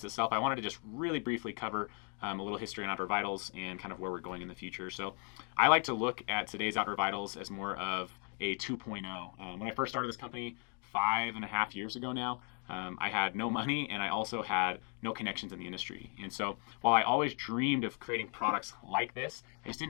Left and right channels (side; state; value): right; quieter; 39.4 dB